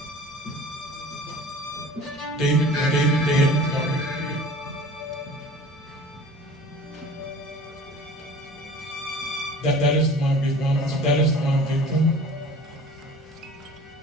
David Clark. That is my victim. That is my victim.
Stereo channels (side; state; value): both; normal; correlation 0.43